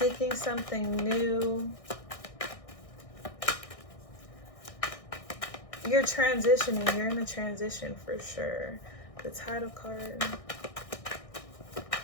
something new. You're transitioning. You're in a transition for sure. The title card.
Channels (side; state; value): right; late; 1.6 ms